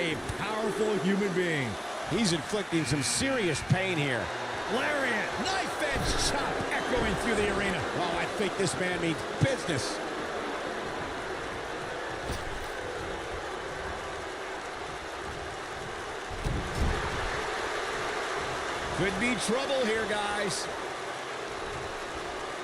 powerful human being. He's inflicting some serious pain here. Lariat, knife edge chop echoing through the arena. Oh, I think this man means business. Could be trouble here, guys.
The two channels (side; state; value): both; identical; correlation 1.00